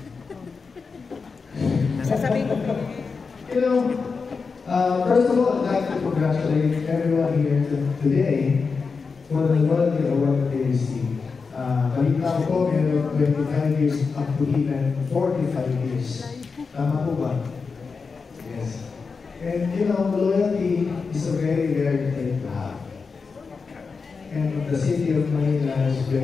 Sasabihin ko. You know, first of all, I'd like to congratulate everyone here today for the loyalty award they received. Balita ko, meron 25 years up to even 45 years. Tama po ba? Yes. And you know, loyalty is a very rare thing to have. And the city of Manila is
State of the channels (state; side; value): quieter; right; 4.9 dB